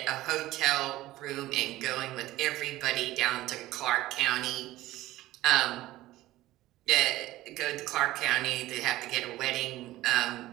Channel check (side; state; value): left; quieter; 16.3 dB